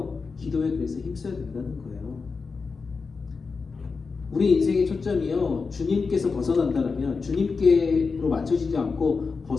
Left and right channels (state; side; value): quieter; right; 4.7 dB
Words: 기도에 그래서 힘써야 된다는 거예요. 우리 인생의 초점이요, 주님께서 벗어난다라면, 주님께로 맞춰지지 않고